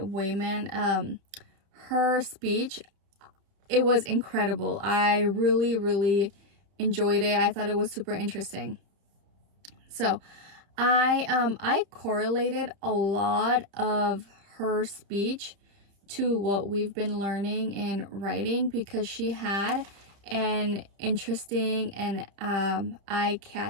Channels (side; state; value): left; late; 30 ms